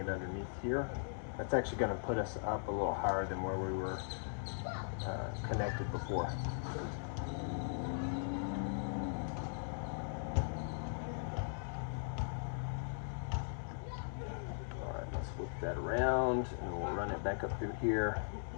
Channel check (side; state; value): right; silent; digital silence